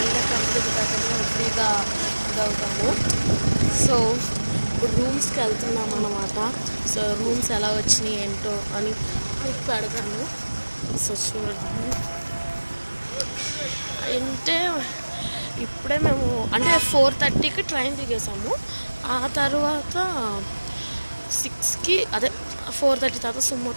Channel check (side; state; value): both; inverted; correlation -1.00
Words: మనం ఫ్రీగా ఇదవుతాము. సో ఇప్పుడు రూమ్స్కి వెళ్తున్నాం అన్నమాట. సో రూమ్స్ ఎలా వచ్చినాయి ఏంటో అని మీకు పెడతాను. సో చూడండి. అంటే ఇప్పుడే మేము అంటే 4:30కి ట్రైన్ దిగేసాము. ఆ తర్వాత 6కి అదే 4:30 తర్వాత సుమో